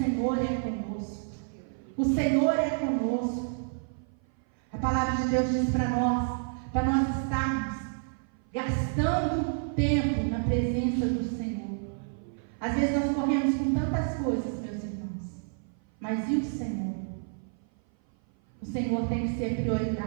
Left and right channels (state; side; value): silent; left; 56 dB below the other